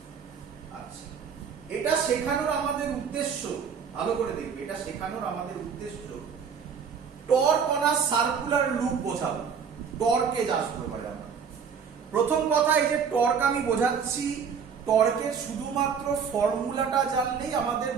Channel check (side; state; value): left; quieter; 6.6 dB